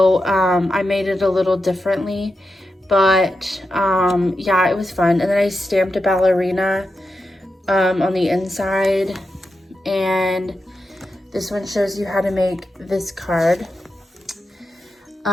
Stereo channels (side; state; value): both; normal; correlation 0.88